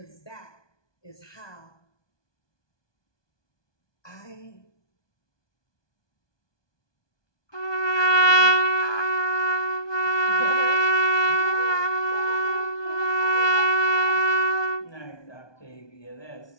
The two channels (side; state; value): right; late; 1.2 ms